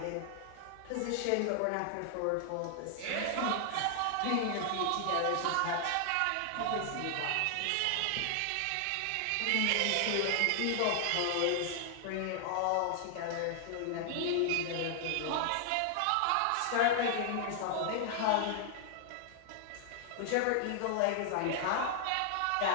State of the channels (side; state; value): both; different; correlation 0.00